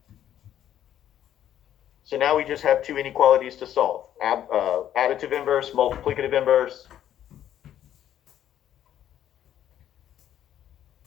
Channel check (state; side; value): quieter; right; 11.0 dB